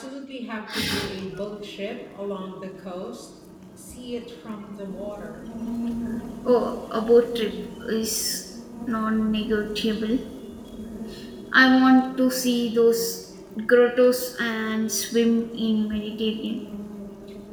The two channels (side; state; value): both; identical; correlation 1.00